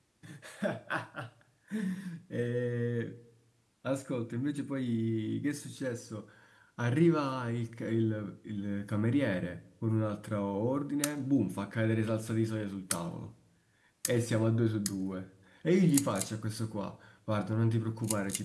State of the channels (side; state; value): both; identical; correlation 1.00